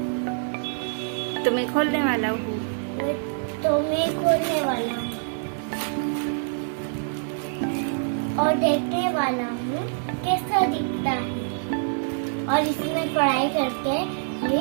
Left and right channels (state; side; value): silent; left; digital silence